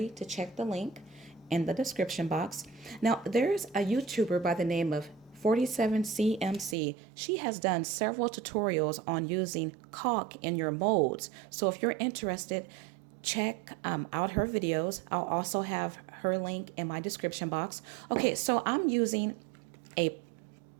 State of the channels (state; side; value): drops out; left; at 6.8 s